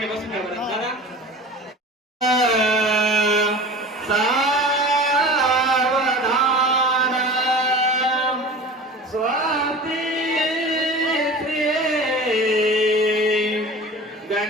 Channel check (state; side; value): normal; both; correlation 0.37